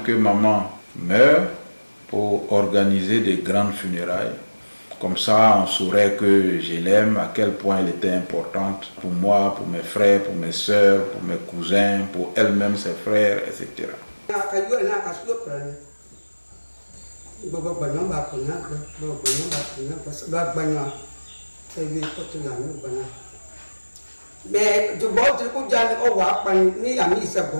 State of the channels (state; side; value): inverted; both; correlation -1.00